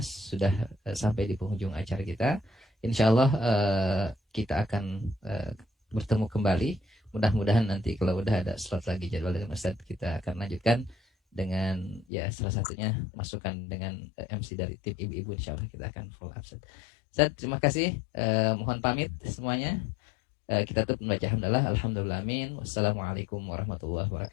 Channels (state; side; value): drops out; right; at 12.1 s